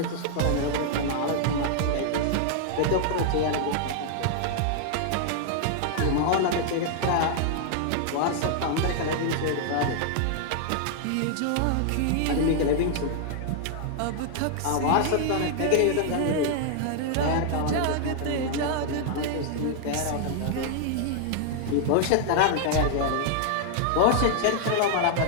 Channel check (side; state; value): both; different; correlation -0.01